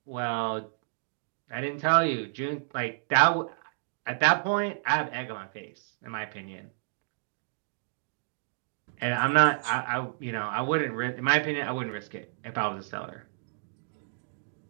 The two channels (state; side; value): silent; left; digital silence